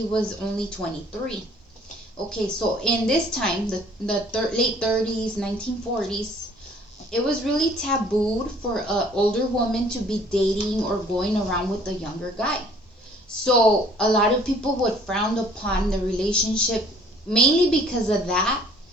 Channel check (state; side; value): normal; both; correlation 0.55